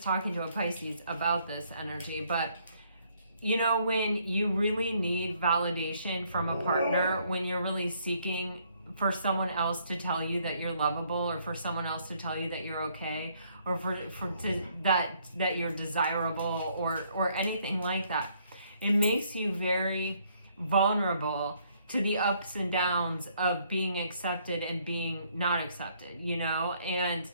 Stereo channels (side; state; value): both; inverted; correlation -0.67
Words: talking to a Pisces about this energy, but when you really need validation from a partner, when you're really seeking for someone else to tell you that you're lovable, or for someone else to tell you that you're okay, or that you're desirable, or anything like that, it makes you very vulnerable to the ups and downs of being accepted and being not accepted, and